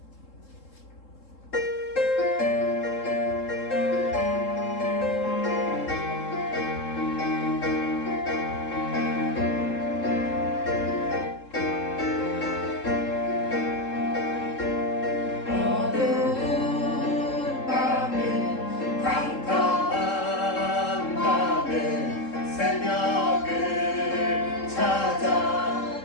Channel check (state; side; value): late; right; 3.7 ms